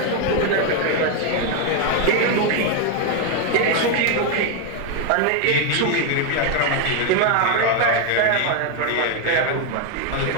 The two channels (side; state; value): both; different; correlation 0.01